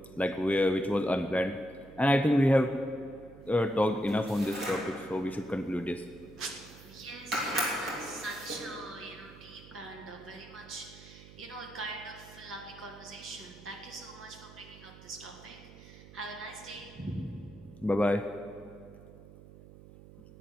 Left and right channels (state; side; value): noise; right; hum, 18 dB below the sound